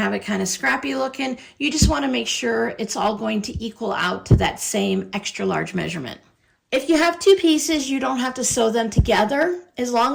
it kind of scrappy looking, you just want to make sure it's all going to equal out to that same extra large measurement. If you have two pieces, you don't have to sew them together as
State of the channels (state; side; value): identical; both; correlation 1.00